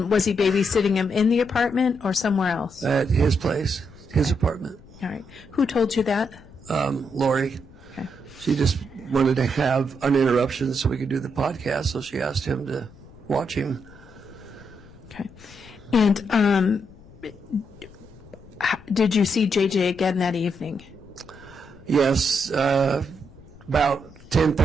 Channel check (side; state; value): left; noise; rumble, 22 dB below the sound